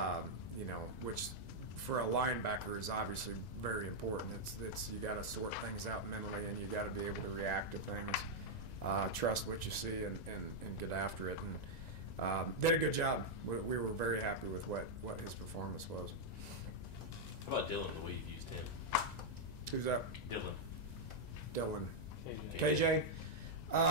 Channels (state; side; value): late; right; 1.9 ms